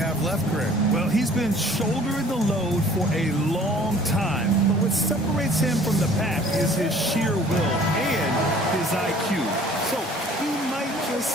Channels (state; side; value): normal; both; correlation 0.52